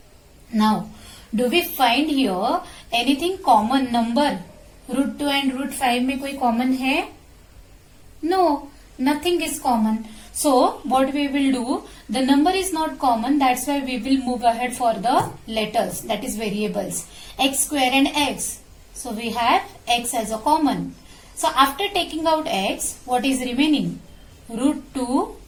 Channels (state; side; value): identical; both; correlation 1.00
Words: Now, do we find here anything common number? Root 2 and root 5 में कोई common है? No, nothing is common. So, what we will do, the number is not common, that's why we will move ahead for the letters, that is variables. X square and x. So, we have x as a common. So, after taking out x, what is remaining? Root 2